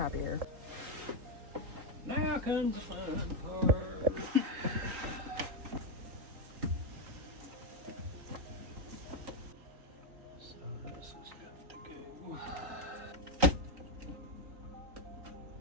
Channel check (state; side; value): late; left; 3.9 ms